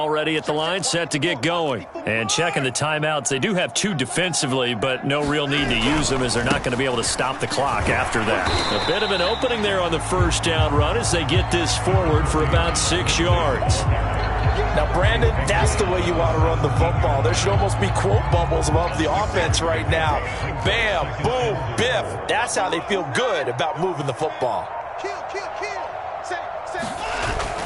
at the line, set to get going. And checking the timeouts. They do have 2 defensively, but no real need to use them as they're not going to be able to stop the clock after that. A bit of an opening there on the first down run as they get this forward for about 6 yards. Now, Brandon, that's the way you want to run the football. There should almost be quote bubbles above the offense right now. Bam, boom, biff. That's how they feel good about moving the football. Kill. Say.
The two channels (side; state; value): both; identical; correlation 1.00